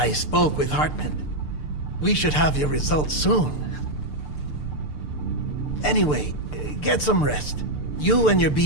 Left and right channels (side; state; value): right; late; 6.7 ms